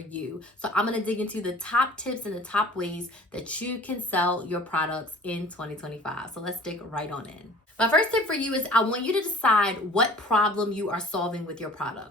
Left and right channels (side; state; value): both; normal; correlation 0.47